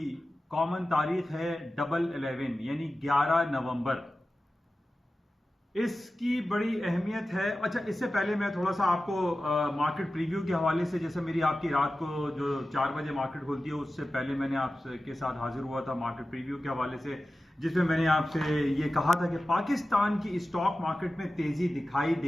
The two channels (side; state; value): both; normal; correlation 0.95